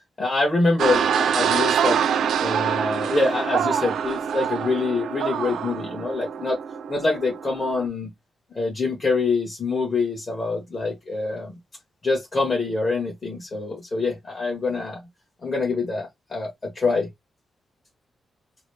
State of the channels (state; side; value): normal; both; correlation 0.76